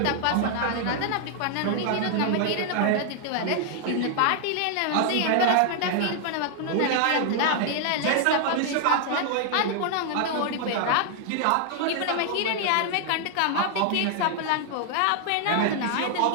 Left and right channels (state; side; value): different; both; correlation 0.00